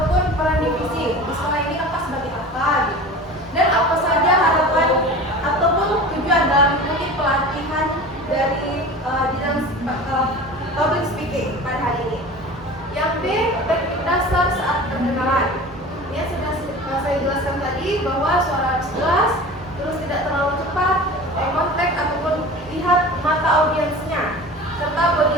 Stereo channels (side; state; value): both; normal; correlation 0.36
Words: peran divisi. Di sekolah ini kakak sebagai apa gitu. Dan apa saja harapan ataupun tujuan dalam mengikuti pelatihan dari bidang public speaking pada hari ini. Yang B, teknik dasar saat perkenalan. Ini sudah saya jelaskan tadi bahwa suara harus jelas, terus tidak terlalu cepat, eye contact ataupun lihat mata audiensnya, serta